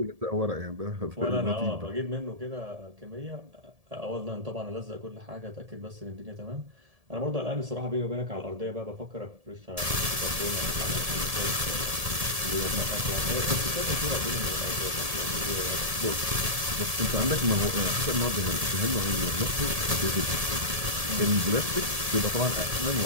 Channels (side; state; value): left; late; 1.7 ms